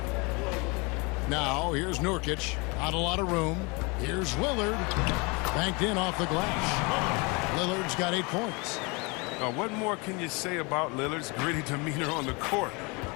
Now, here's Nurkic. Not a lot of room. Here's Lillard. Banked in off the glass. Lillard's got 8 points. What more can you say about Lillard's gritty demeanor on the court?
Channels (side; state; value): right; quieter; 28.8 dB